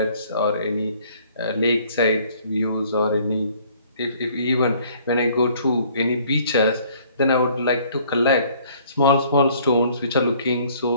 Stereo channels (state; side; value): inverted; both; correlation -0.58